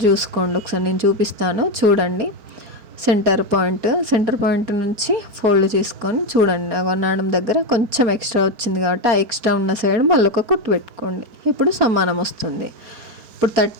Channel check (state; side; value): late; left; 4.6 ms